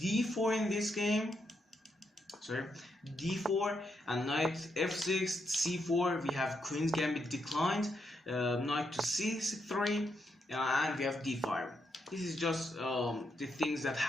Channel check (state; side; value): normal; both; correlation 0.81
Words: in this game. Sorry, d4 and knight f6, c4. We have queen's gambit declined, knight to c3, and we have d5. This is just the things that